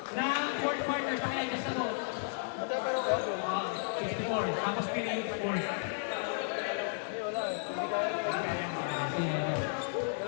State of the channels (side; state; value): right; silent; 55 dB below the other